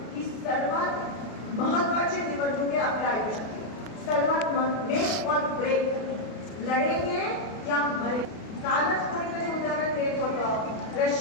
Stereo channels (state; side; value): late; right; 32 ms